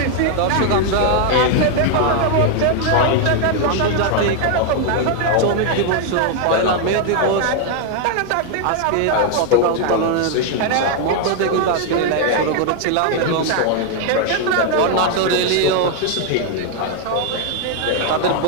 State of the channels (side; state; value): both; different; correlation 0.00